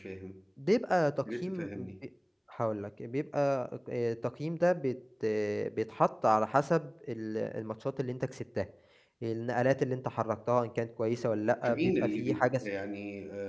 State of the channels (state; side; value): identical; both; correlation 1.00